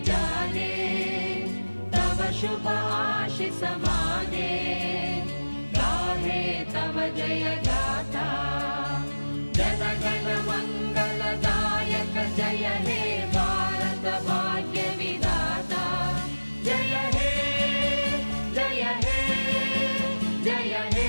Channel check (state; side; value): inverted; both; correlation -1.00